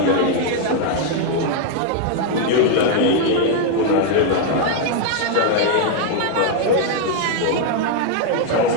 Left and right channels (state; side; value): different; both; correlation 0.00